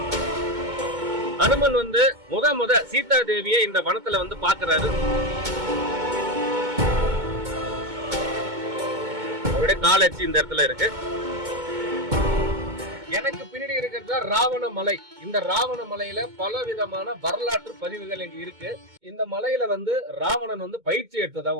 அனுமன் முத சீதா தேவியை இந்த வனத்துல பாக்குறாரு. அவருடைய காலச்சி இந்த இடத்துல இருக்கு. எனக்கு பின்னாடி இருக்கிறது ராவண மலை. இந்த ராவண மலையில பல விதமான வரலாற்று பதிவுகள் இங்க இருக்கு. இந்த மலையில ராவணன் பயிற்சி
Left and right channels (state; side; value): late; left; 2.2 ms